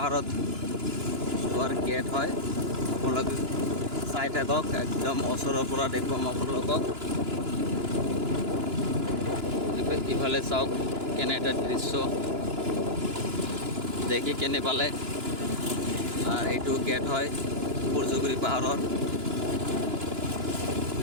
যোৱাৰ গেট হয়। আপোনালোকে চাই থাকক, একদম ওচৰৰ পৰা দেখুৱাম আপোনালোকক। ইফালে চাওক কেনে এটা দৃশ্য, দেখি কেনে পালে। আৰ এইটো গেট হয় সূৰ্যগিৰি পাহাৰৰ।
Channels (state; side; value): late; left; 2.9 ms